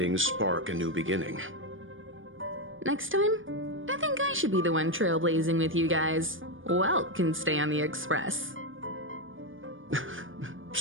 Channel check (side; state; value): left; late; 0.58 ms